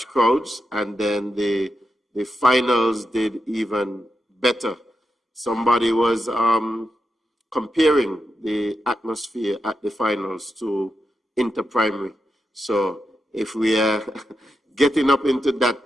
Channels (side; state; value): both; normal; correlation 0.87